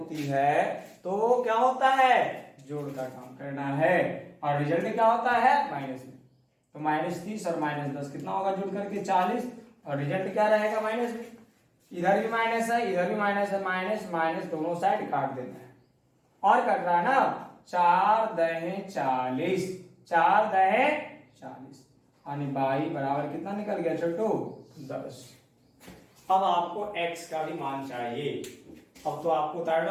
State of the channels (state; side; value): identical; both; correlation 1.00